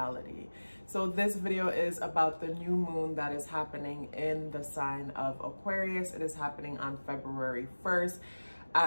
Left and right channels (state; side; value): inverted; both; correlation -1.00